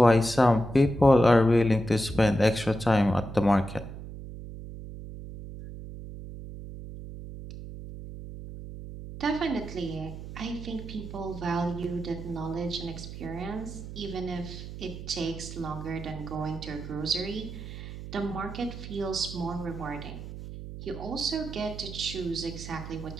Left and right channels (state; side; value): noise; right; hum, 11 dB below the sound